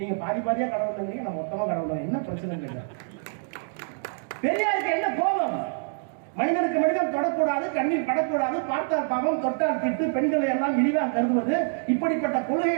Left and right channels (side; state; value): left; silent; digital silence